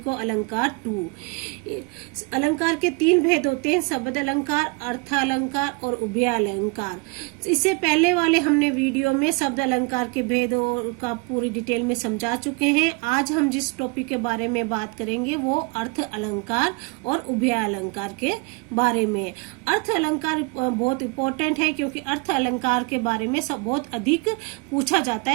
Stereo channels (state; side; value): quieter; left; 29.6 dB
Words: को अलंकार 2। अलंकार के 3 भेद होते हैं, शब्द अलंकार, अर्थ अलंकार और उभय अलंकार। इससे पहले वाले हमने वीडियो में शब्द अलंकार के भेद का पूरी डिटेल में समझा चुके हैं। आज हम जिस टॉपिक के बारे में बात करेंगे वो अर्थ अलंकार और उभय अलंकार के बारे में। अर्थ अलंकार बहुत इंपॉर्टेंट है क्योंकि अर्थ अलंकार के बारे में सब बहुत अधिक पूछा जाता